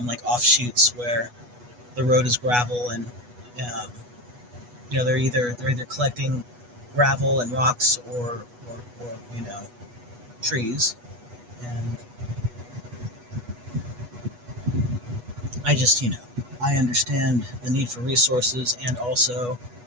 like offshoots where the road is gravel, and um, they're either collecting gravel and rocks, or trees. And I just I understand the need for resources, and also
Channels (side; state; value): left; late; 8.2 ms